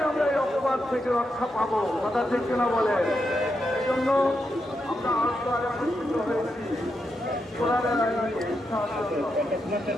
আমরা এই অপবাদ থেকে রক্ষা পাবো। কথা ঠিক কিনা বলে? এই জন্য আমরা আল্লাহর একত্রিত হয়েছি। কোরআনের আইনে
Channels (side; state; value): both; normal; correlation 0.84